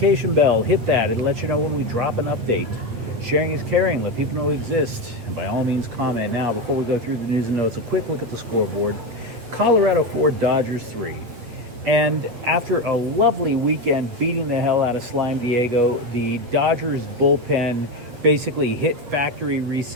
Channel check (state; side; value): late; left; 8.7 ms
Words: bell. Hit that. It'll let you know when we drop an update. Sharing is caring. Let people know we exist. And by all means, comment. Now, before we go through the news and notes, a quick look at the scoreboard. Colorado 4, Dodgers 3. And after a lovely weekend beating the hell out of Slime Diego, the Dodgers bullpen basically hit factory